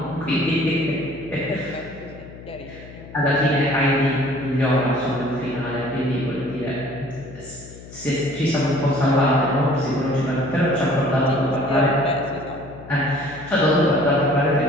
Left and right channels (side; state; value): left; noise; hum, 17 dB below the sound